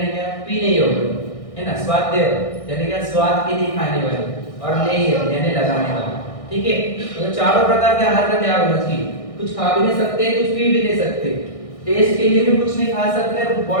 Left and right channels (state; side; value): late; right; 1.6 ms